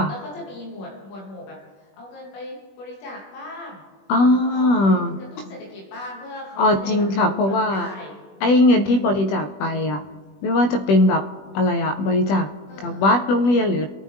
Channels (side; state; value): right; late; 21 ms